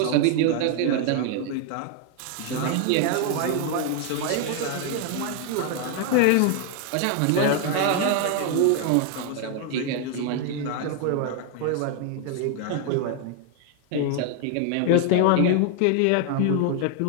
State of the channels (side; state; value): both; different; correlation 0.00